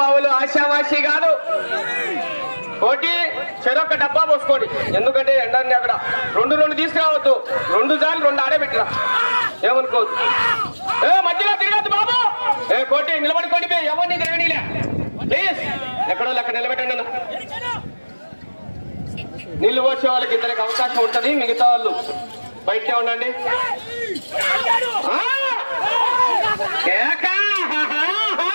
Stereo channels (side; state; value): both; inverted; correlation -1.00